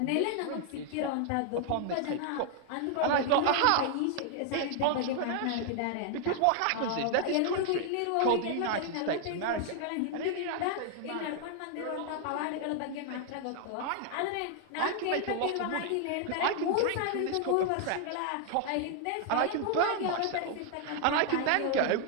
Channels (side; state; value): both; different; correlation 0.00